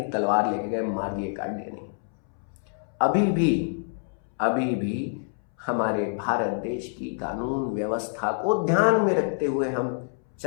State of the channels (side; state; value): right; silent; 60 dB below the other